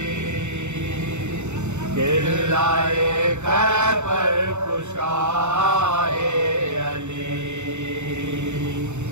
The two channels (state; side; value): late; left; 0.83 ms